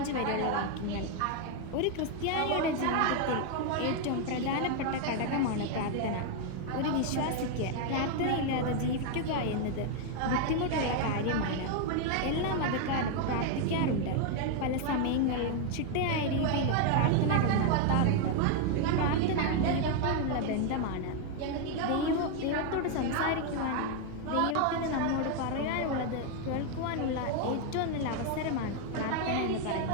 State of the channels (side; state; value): both; different; correlation 0.01